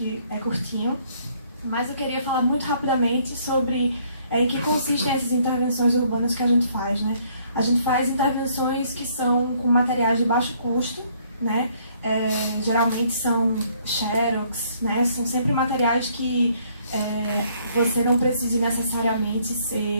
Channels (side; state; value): both; inverted; correlation -0.65